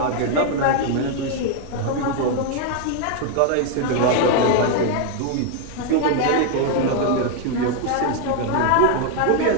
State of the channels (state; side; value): different; both; correlation 0.00